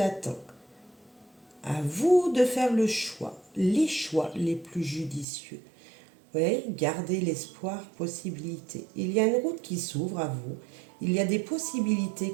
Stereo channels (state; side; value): drops out; left; at 5.2 s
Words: À vous de faire les choix les plus judicieux. Oui, gardez l'espoir, possibilité. Il y a une route qui s'ouvre à vous. Il y a des possibilités